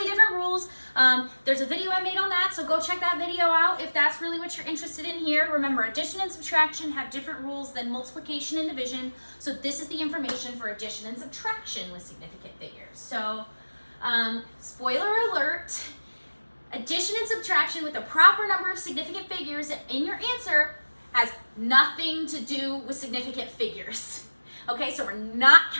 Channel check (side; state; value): both; inverted; correlation -1.00